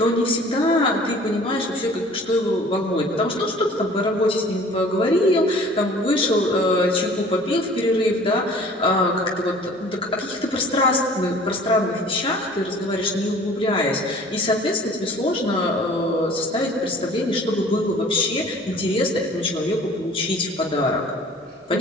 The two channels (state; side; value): normal; both; correlation 0.49